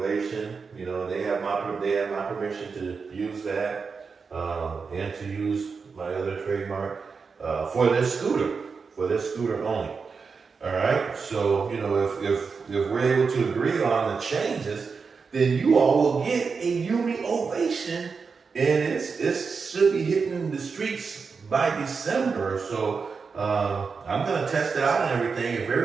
You know, they have my permission to use that and to use my other trademark for this scooter only. All right. So, you know, if we're able to agree on the changes, then you all will get a YUME OHvation, and it should be hitting the streets by December. So I'm going to test it out and everything. If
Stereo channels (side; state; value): left; quieter; 5.2 dB